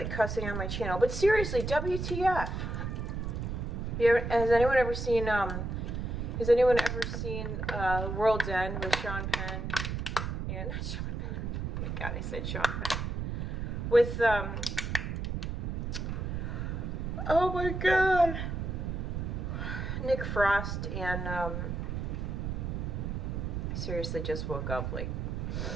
cussing on my channel, but seriously, WTF? Has anyone ever seen, World's End with Sean Penn? And, not Sean Penn. Oh my God, I said Sean Penn. With, oh my God. Nick Frost and, I seriously just woke up, like,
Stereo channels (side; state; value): right; noise; rumble, 3 dB below the sound